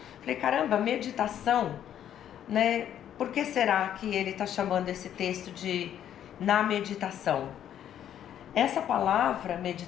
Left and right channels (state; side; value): quieter; right; 10.3 dB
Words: Falei, caramba, meditação, né? Por que será que ele está chamando esse texto de na meditação? Essa palavra